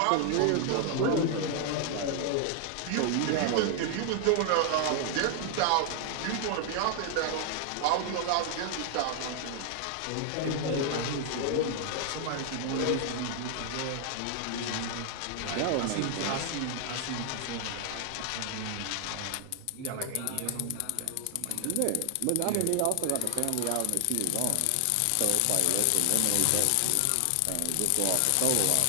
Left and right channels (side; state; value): both; different; correlation 0.00